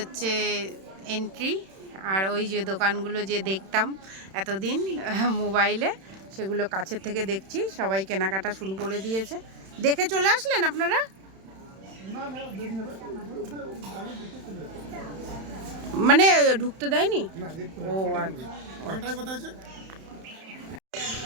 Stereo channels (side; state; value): left; late; 31 ms